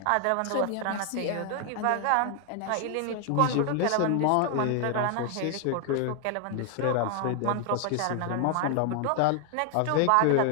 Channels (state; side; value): different; both; correlation 0.00